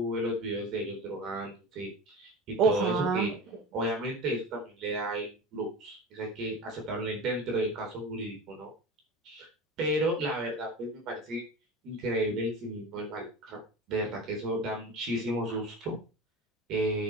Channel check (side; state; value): both; normal; correlation 0.30